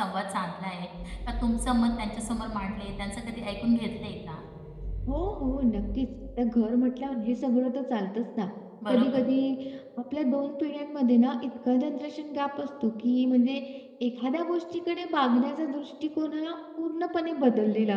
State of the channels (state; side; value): identical; both; correlation 1.00